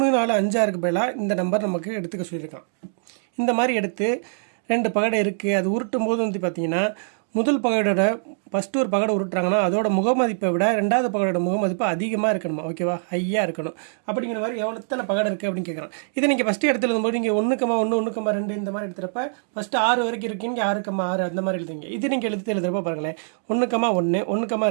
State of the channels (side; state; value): left; silent; digital silence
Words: 4 5 6க்கு பதிலாக இந்த நம்பர் நமக்கு எடுத்துக்க சொல்லியிருக்கான். இந்த மாதிரி எடுத்து 2 பகடை இருக்குது. அது உருட்டும் போது வந்து பார்த்தீங்கன்னா முதல் பகடோட ஃபஸ்ட்டு ஒரு பகடை உருட்டுறாங்கன்னா அதோட முகமதிப்பை விட 2வது பகடோட முகமதிப்பு அதிகமாக இருக்கணுமா. ஓகேவா? ஹையாக இருக்கணும். அப்படிங்கிற மாதிரி எத்தனை பகடை இருக்குது அப்படின்னு கேட்குறான். இதை நீங்கள் ஃபஸ்ட்டு எடுத்து எழுதும்போது நீங்கள் 1,1 1,2 இந்த மாதிரி எடுத்துகிறப்ப ஃபஸ்ட்டு 6 வரைக்கும் இருக்கீங்க, 6,6 அந்த மாதிரி எழுதுங்க. இது நீங்கள் எழுதுறப்ப பாருங்களேன், 1,1